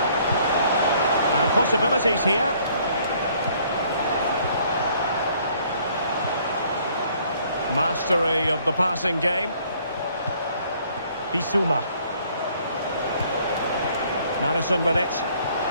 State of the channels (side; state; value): both; inverted; correlation -0.61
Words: Possibilities here. Mastery of the passing game. Bissouma. Maddison with it.